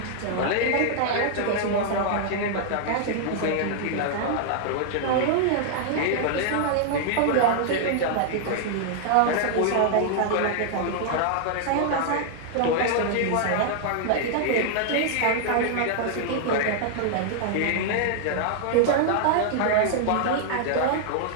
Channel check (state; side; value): different; both; correlation -0.01